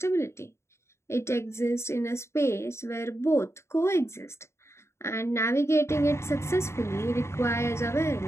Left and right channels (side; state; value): right; late; 0.13 ms